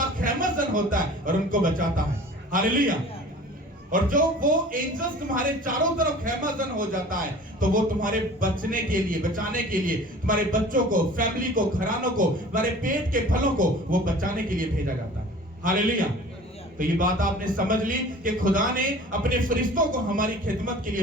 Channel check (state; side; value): normal; both; correlation 0.44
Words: खैमजन होता है और उनको बचाता है। हालेलुया। और जो वो एंजल्स तुम्हारे चारों तरफ खैमजन हो जाता है, तो वो तुम्हारे बचने के लिए, बचाने के लिए, तुम्हारे बच्चों को, फैमिली को, घरानों को, तुम्हारे पेट के फलों को वो बचाने के लिए भेजा जाता है। हालेलुया। तो ये बात आपने समझ ली कि खुदा ने अपने फरिश्तों को हमारी खिदमत के